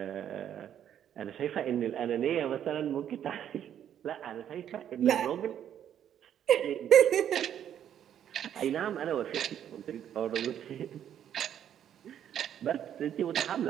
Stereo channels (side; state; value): left; quieter; 9.9 dB